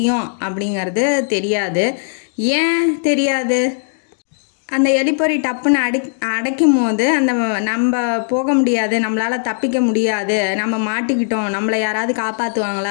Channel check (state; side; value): silent; right; digital silence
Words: அப்படிங்கிறது தெரியாது. ஏன் தெரியாது? அந்த எலிப்பொறி டப்புன்னு அடைக்கும் போது அந்த நம்ம போக முடியாது, நம்மளால் தப்பிக்க முடியாது, நம்ம மாட்டிக்கிட்டோம், நம்மளை யாராவது